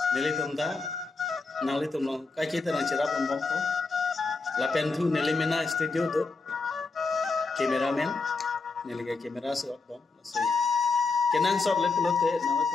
neli tumda nali tumno kai kita nang chera bombong ko lapen thu neli mena studio do cameraman neli ga camera so bom so kenang shot le pulote nawa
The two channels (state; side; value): quieter; right; 4.0 dB